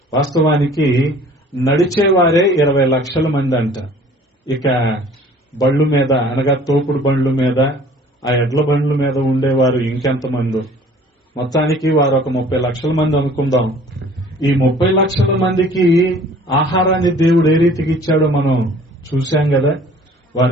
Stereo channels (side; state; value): both; normal; correlation 0.51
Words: వాస్తవానికి నడిచేవారే 20 లక్షల మంది అంట. ఇక బళ్ళు మీద అనగా తోపుడు బండ్ల మీద, ఆ ఎడ్ల బండ్ల మీద ఉండేవారు ఇంకెంతమంది. మొత్తానికి వారు ఒక 30 లక్షల మంది అనుకుందాం. ఈ 30 లక్షల మందికి ఆహారాన్ని దేవుడు ఏ రీతికి ఇచ్చాడో మనం చూశాం కదా.